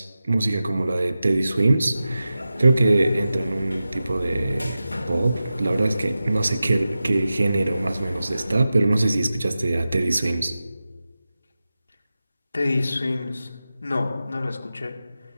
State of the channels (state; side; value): inverted; both; correlation -0.93